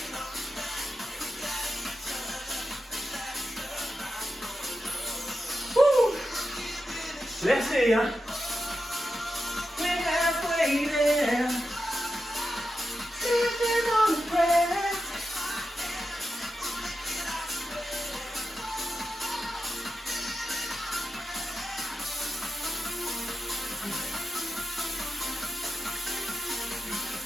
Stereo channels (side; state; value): both; normal; correlation 0.90